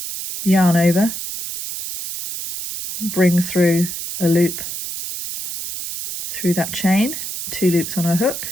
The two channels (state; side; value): noise; right; hiss, 7 dB below the sound